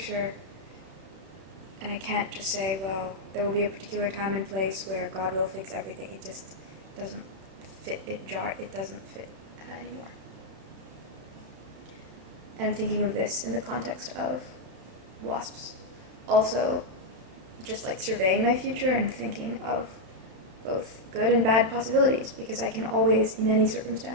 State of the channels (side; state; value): left; late; 31 ms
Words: And I can't just say, well, there will be a particular time and place where God will fix everything. It just doesn't it doesn't fit anymore. And I'm thinking of this in the context of wasps. Also, just like surveying my future and thinking of both good and bad possibilities, because I can always, in any